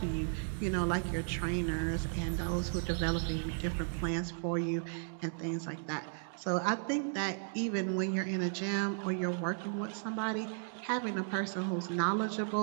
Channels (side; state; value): left; silent; digital silence